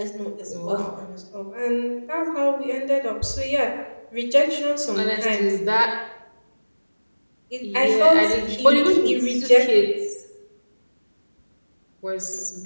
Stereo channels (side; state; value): both; inverted; correlation -1.00